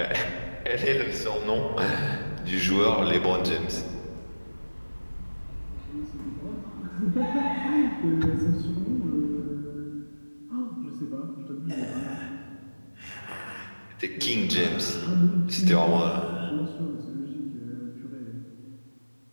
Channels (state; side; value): inverted; both; correlation -1.00